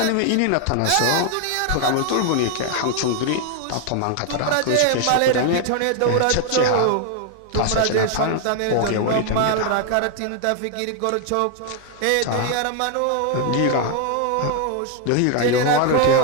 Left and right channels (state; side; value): different; both; correlation 0.00